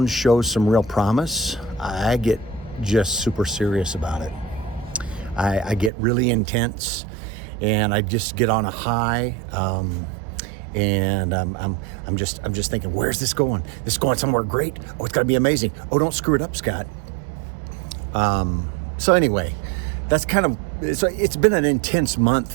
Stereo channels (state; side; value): drops out; left; at 5.9 s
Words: shows some real promise, I get just super serious about it. I get really intense, and I just get on a high, and I'm just thinking, where's this going? This is going somewhere great. Oh, it's got to be amazing. Oh, don't screw it up, Scott. So anyway, that's kind of it's been an intense